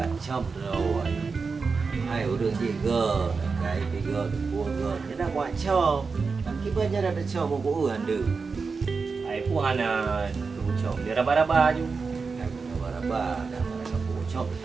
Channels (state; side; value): quieter; left; 4.8 dB